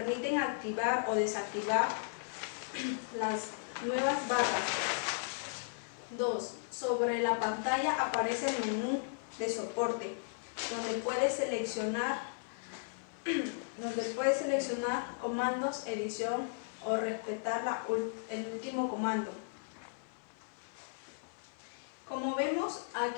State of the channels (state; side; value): silent; right; 54 dB below the other